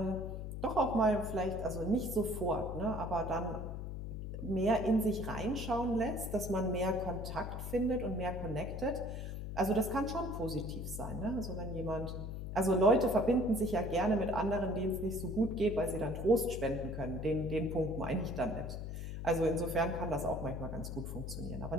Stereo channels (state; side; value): noise; left; hum, 6 dB below the sound